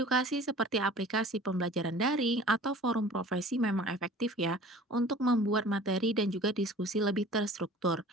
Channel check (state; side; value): normal; both; correlation 0.45